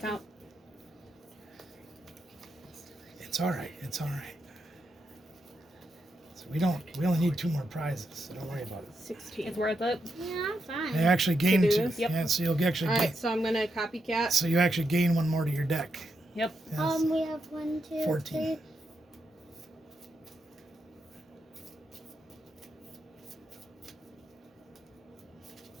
Count. It's all right. It's all right. So we only need 2 more prizes, so don't worry about it. 16. It's worth it. Yeah, I'm fine. They actually gain do 2. this? Yep. Yeah, so you'll actually gain. Alright, so I'm gonna copycat. So you actually gain 1 more to your deck. Yep. Yes. We have 1, 2, 14. 3.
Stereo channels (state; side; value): normal; both; correlation 0.83